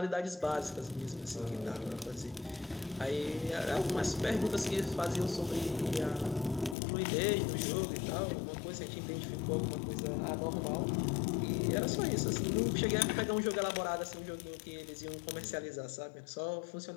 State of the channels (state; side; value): drops out; right; at 6.8 s